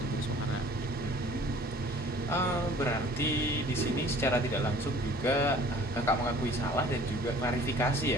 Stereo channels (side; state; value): both; normal; correlation 0.50